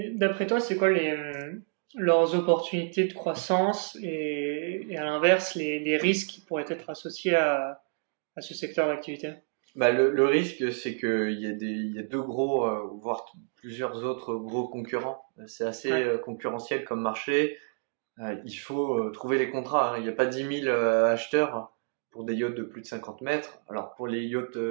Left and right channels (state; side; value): silent; left; 59 dB below the other